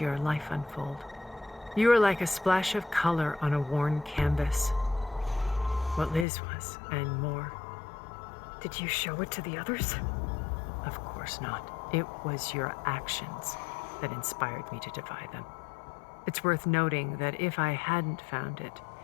life unfold, you were like a splash of color on a worn canvas. What Liz was, and more. Did you show it to the others? Of course not. It was your actions that inspired me to defy them. It's worth noting that if I hadn't found it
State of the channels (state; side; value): drops out; right; at 6.2 s